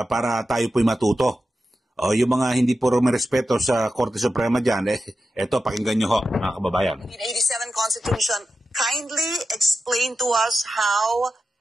para tayo po'y matuto. Yung mga hindi po rumerespeto sa Korte Suprema dyan, ito pakinggan nyo ho, mga kababayan. 1987 Constitution, kindly explain to us how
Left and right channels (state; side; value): normal; both; correlation 0.91